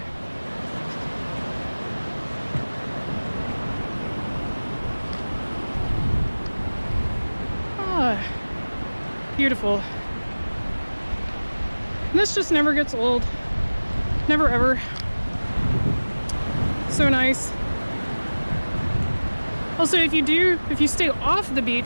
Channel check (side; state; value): both; inverted; correlation -1.00